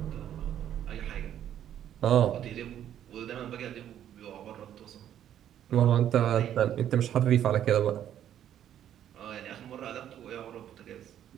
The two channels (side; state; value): left; quieter; 10.6 dB